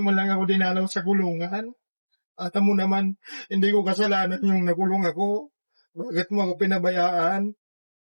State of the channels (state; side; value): inverted; both; correlation -1.00